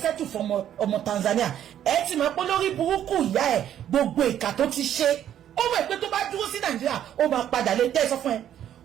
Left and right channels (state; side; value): quieter; left; 10.6 dB